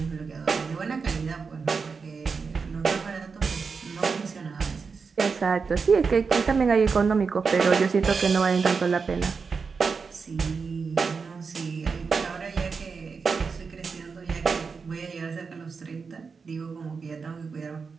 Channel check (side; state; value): left; quieter; 5.2 dB